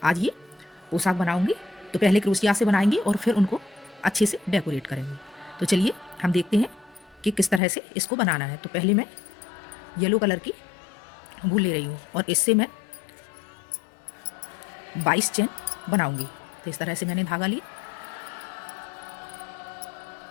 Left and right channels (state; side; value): drops out; right; at 7.6 s